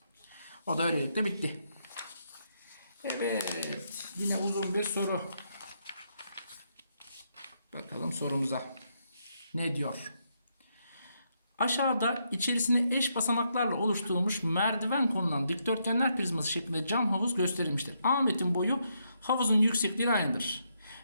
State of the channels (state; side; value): inverted; both; correlation -0.78